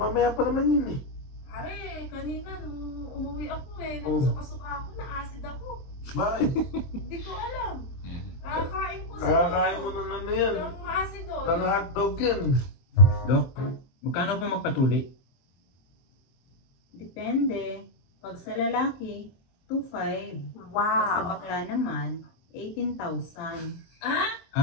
pa naman yun eh. Pare, kanina nung umuwi ako eh, Oh. nagsuka-suka ako, na-acid ako. Bakit? Hindi ko alam. Nakakain ko sa Nakakain mo ng ano yan. ng acid oh. Ng hotdog yan. Dok, magkano po magpatuli? Depende. Pag sa lalaki, 2,500. Pag sa bakla naman, 18,000.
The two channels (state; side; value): late; right; 23 ms